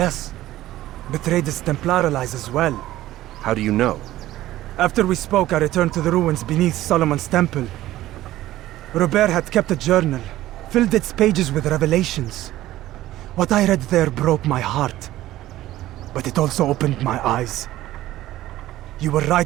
Betrayed his Templar allies as well. How do you know? After we spoke, I returned to the ruins beneath Solomon's temple. Robert had kept a journal, filled its pages with revelations. What I read there broke my heart. But it also opened my eyes. You were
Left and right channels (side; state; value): left; quieter; 15.1 dB